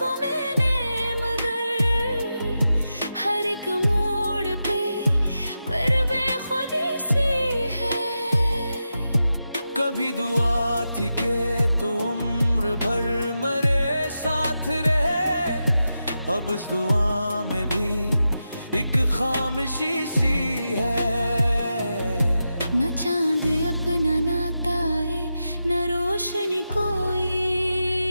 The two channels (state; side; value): inverted; both; correlation -0.89